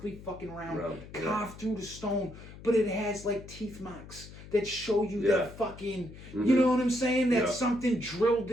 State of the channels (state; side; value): noise; left; hum, 16 dB below the sound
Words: fucking round, yeah. carved through the stone. But it has like teeth marks that show you that fucking. Mm-hmm. You know what I'm saying? That something drilled